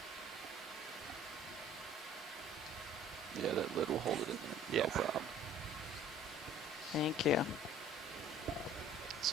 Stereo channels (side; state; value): both; normal; correlation 0.51